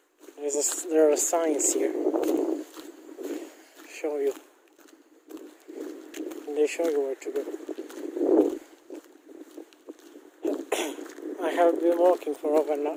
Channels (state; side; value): identical; both; correlation 1.00